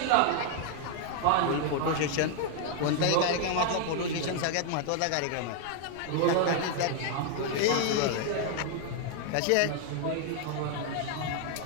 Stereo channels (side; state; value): both; different; correlation 0.00